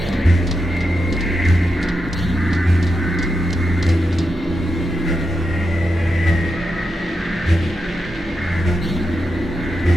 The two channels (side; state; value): both; normal; correlation 0.87